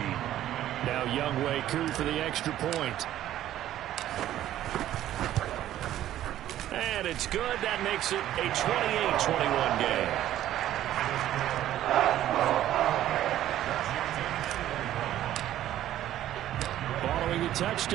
Now Younghoe Koo for the extra point. And it's good. That makes it a 28-21 game. Following the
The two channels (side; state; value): left; quieter; 12.7 dB